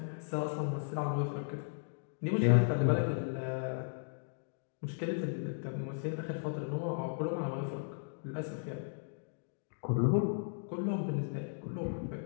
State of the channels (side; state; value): right; silent; digital silence